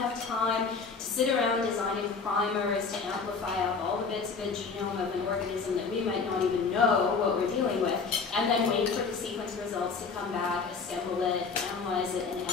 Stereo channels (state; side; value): quieter; right; 5.0 dB